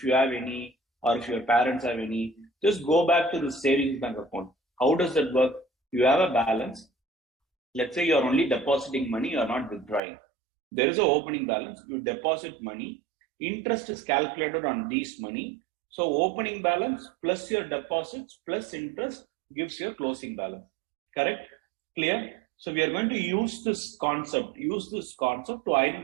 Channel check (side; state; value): left; drops out; at 10.0 s